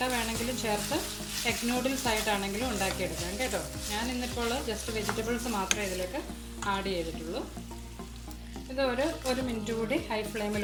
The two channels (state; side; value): identical; both; correlation 1.00